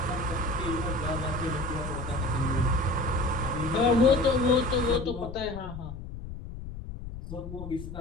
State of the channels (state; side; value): noise; left; rumble, 10 dB below the sound